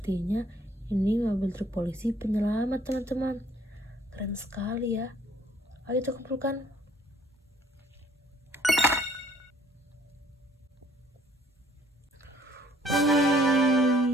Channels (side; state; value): both; normal; correlation 0.60